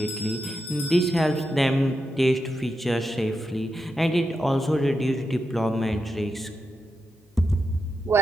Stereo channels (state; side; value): normal; both; correlation 0.86